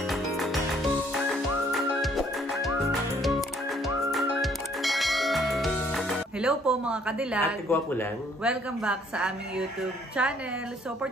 Hello po mga kadilag! Ate Gwapo lang. Welcome back sa aming YouTube channel. So for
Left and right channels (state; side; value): normal; both; correlation 0.63